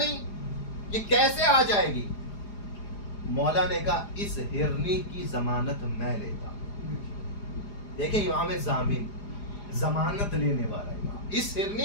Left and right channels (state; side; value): late; right; 4.9 ms